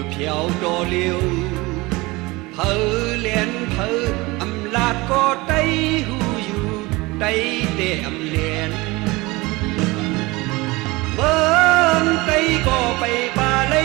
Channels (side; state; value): left; quieter; 22.6 dB